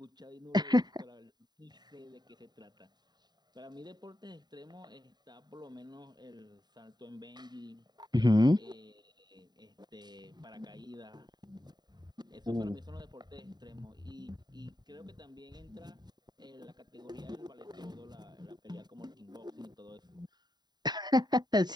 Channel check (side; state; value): left; late; 0.20 ms